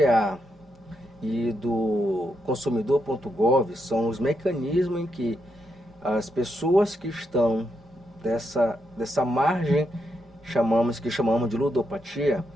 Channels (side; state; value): both; normal; correlation 0.81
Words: e do consumidor.gov, são os mecanismos em que as pessoas que estão dessa margem que chamamos de ludopatia,